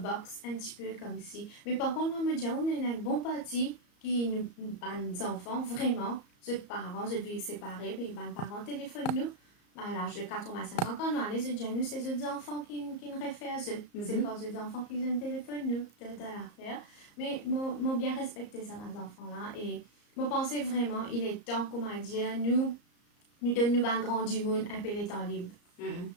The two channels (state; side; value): late; right; 34 ms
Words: un petit peu comme si. Mais par contre, moi, me dire, on est un bon parti qui nous des enfants, vraiment, ceux parents, je vis séparés, puis les parents téléphonent nous. À l'âge de 85 ans, quand nous allons, nous, c'est les enfants qui nous réfèrent à eux. C'est pas les enfants qui ont un téléphone, nous, peut-être à l'affaire. Mais moi, bien respecté ça, mes enfants-là. Et moi, pensais vraiment, il est temps, comment dire, nous donnons un grand du monde un peu les temps libres.